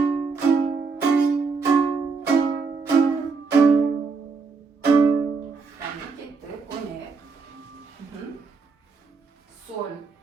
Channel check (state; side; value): quieter; left; 4.8 dB